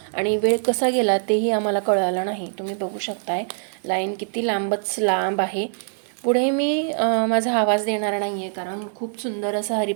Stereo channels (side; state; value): left; silent; digital silence